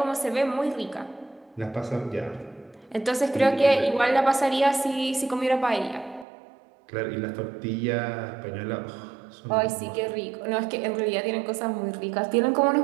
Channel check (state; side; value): drops out; left; at 6.2 s